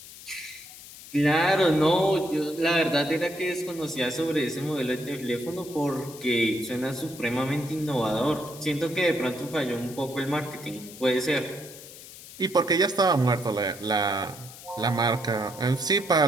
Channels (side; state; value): left; noise; hiss, 16 dB below the sound